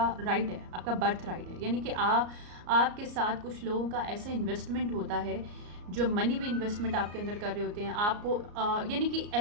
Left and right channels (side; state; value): left; late; 34 ms